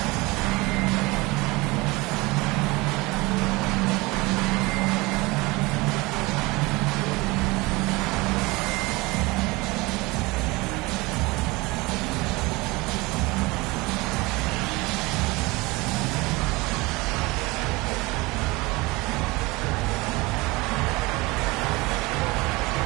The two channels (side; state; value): left; quieter; 23.2 dB